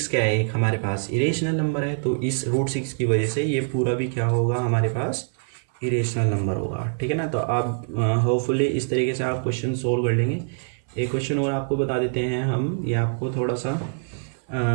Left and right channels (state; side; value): silent; left; 59 dB below the other